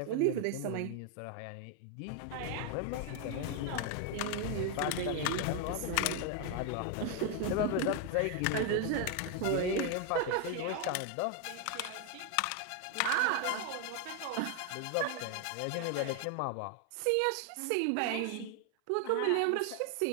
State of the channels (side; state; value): both; different; correlation 0.01